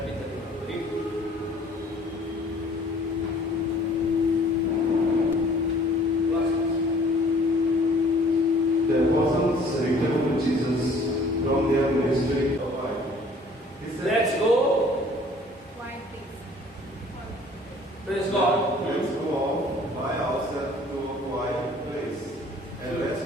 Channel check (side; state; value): both; normal; correlation 0.53